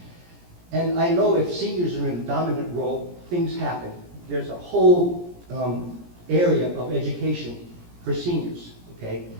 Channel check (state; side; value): late; left; 17 ms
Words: And I know if seniors are in a dominant role, things happen. There's a whole area of education for seniors, okay?